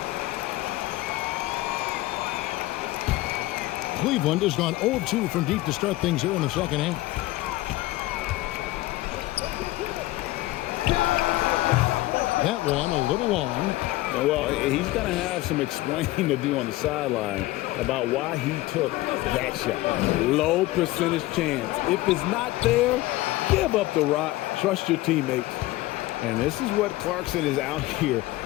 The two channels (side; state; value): right; quieter; 18.1 dB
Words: Cleveland has gone 0-2 from deep to start things here in the second half. That one a little long. Well, he's going to have some explaining to do on the sideline about why he took that shot. Low percentage chance. If it's not there, give up the rock. Trust your teammates. And this is what Clarkson is out here